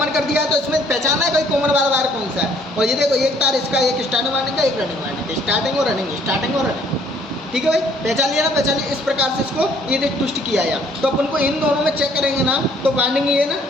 कर दिया, तो इसमें पहचानना है कोई कॉमन वाला वायर कौन सा है। और ये देखो एक तार इसका, एक स्टार्टिंग वायरिंग का, एक रनिंग वायरिंग का, स्टार्टिंग और रनिंग, स्टार्टिंग और रनिंग, ठीक है भाई। पहचान लिया ना, पहचान लिया। इस प्रकार से इसको ये देख ट्विस्ट किया है। तो अपन को इन दोनों में चेक करेंगे ना, तो वाइंडिंग ये ना,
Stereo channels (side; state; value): both; normal; correlation 0.61